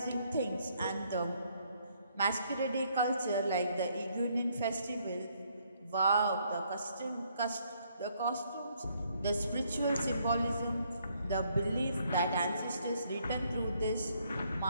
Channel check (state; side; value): inverted; both; correlation -0.70